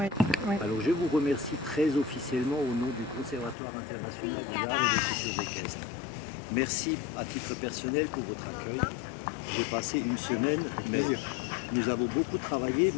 oui. Alors je vous remercie très officiellement au nom du Conservatoire international des arts et des cultures équestres. Merci à titre personnel pour votre accueil. J'ai passé une semaine, mais nous avons beaucoup travaillé,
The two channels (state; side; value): drops out; right; at 3.6 s